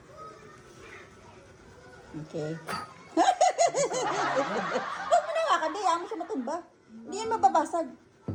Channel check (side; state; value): both; identical; correlation 1.00